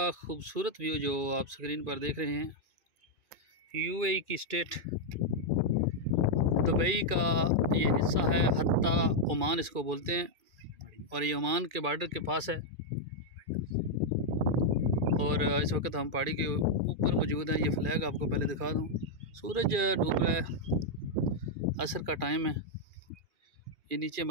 खूबसूरत व्यू जो आप स्क्रीन पर देख रहे हैं, यूएई की स्टेट दुबई का ये हिस्सा है। हत्ता ओमान इसको बोलते हैं और ये ओमान के बॉर्डर के पास है। और इस वक्त हम पहाड़ी के ऊपर मौजूद हैं। ये फ्लैग आपको पहले दिखा दूँ। सूरज डूब रहा है, असर का टाइम है। ये नीचे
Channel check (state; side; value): late; left; 2.4 ms